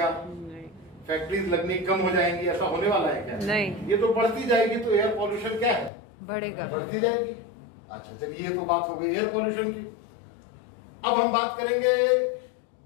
फैक्ट्रीज लगनी कम हो जाएंगी, ऐसा होने वाला है क्या? नहीं। ये तो बढ़ती जाएगी, तो एयर पॉल्यूशन क्या है, बढ़ेगा, बढ़ती जाएगी। अच्छा चलिए, ये तो बात हो गई एयर पॉल्यूशन की। अब हम बात करेंगे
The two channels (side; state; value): right; drops out; at 5.9 s